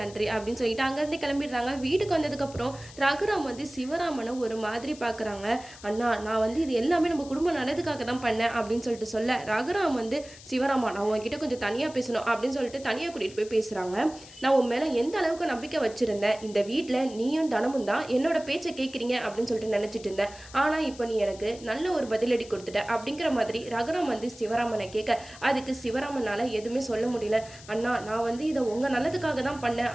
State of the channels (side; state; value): left; noise; hiss, 19 dB below the sound